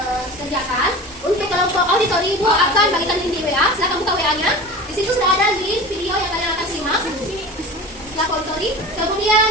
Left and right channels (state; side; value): normal; both; correlation 0.34